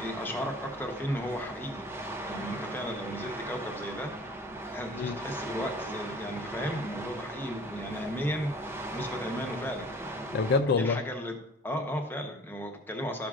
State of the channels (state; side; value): normal; both; correlation 0.46